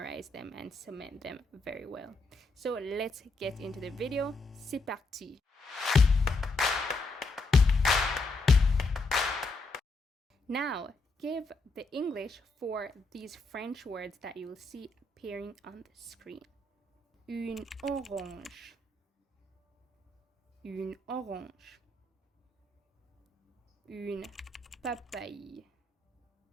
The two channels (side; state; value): right; quieter; 3.2 dB